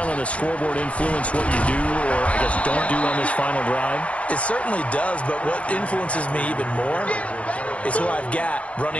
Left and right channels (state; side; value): late; right; 0.064 ms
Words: on the scoreboard influence what you do, or I guess don't do on this final drive? It certainly does, but what influences me even more is who I've got